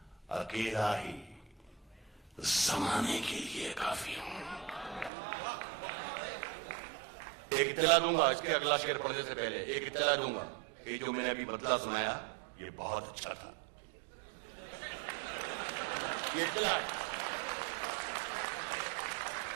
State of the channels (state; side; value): drops out; left; at 5.1 s